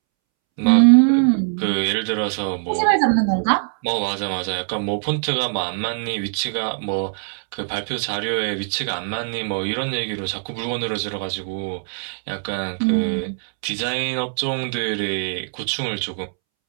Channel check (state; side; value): silent; left; 64 dB below the other